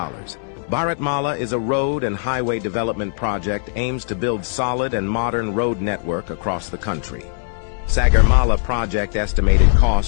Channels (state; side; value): silent; right; 66 dB below the other